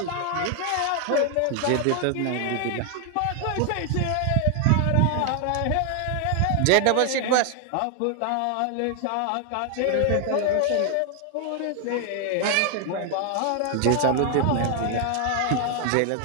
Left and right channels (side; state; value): both; different; correlation 0.00